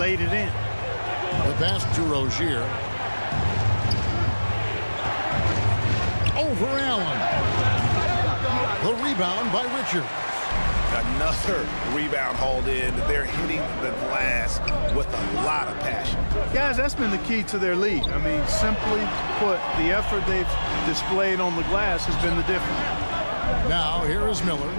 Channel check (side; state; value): both; inverted; correlation -1.00